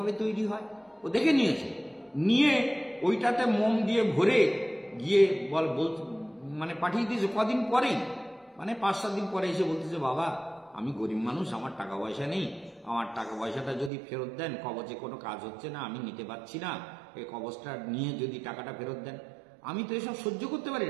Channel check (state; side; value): drops out; left; at 13.9 s